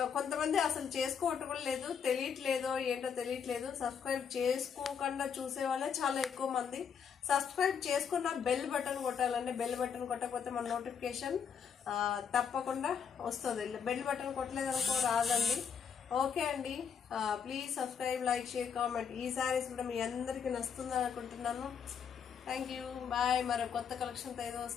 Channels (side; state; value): right; quieter; 7.1 dB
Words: కొంతమంది అసలు చేసుకోవటం కూడా లేదు, తెలియట్లేదో ఏంటో తెలియట్లేదు. సబ్స్క్రైబ్ చేసుకోకుండా చూసే వాళ్ళే చాలా ఎక్కువ మంది. సబ్స్క్రైబ్ చేసుకున్న బెల్ బటన్ కొట్టాలండి. బెల్ బటన్ కొట్టకపోతే మన నోటిఫికేషన్ తప్పకుండా వస్తుంది. బెల్ బటన్ కొట్టలేదనుకో రాదండి. ఓకే అండి, please subscribe, like, share, comment. ఈ శారీస్ కూడా మీ అందరికీ నచ్చుతుందని అనుకుంటున్నాను. Thank you, bye. మరో కొత్త కలెక్షన్తో ఏదో